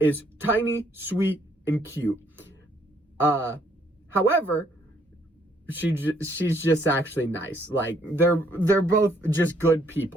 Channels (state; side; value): normal; both; correlation 0.68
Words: tiny, sweet, and cute. However, she's just actually nice. Like, they're both just good